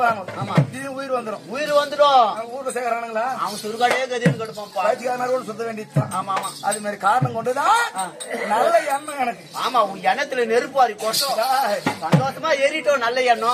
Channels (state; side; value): identical; both; correlation 1.00